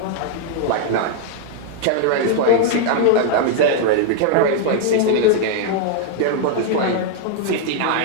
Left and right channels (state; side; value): different; both; correlation 0.00